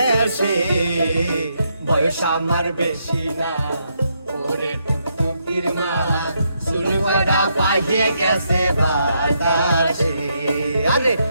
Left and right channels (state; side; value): inverted; both; correlation -0.78